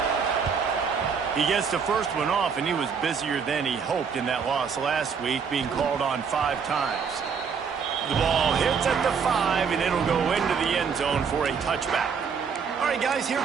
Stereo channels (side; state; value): left; quieter; 6.2 dB